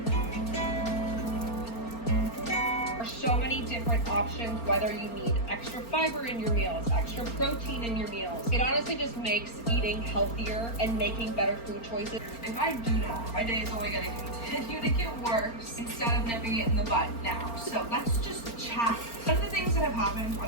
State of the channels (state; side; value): late; right; 4.3 ms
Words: options, whether you need extra fiber in your meals, extra protein in your meals. It honestly just makes eating healthier and making better food choices. If I do not, my day is only going to continue to get worse instead of nipping it in the bud now. So let's just chat. None of the things that have happened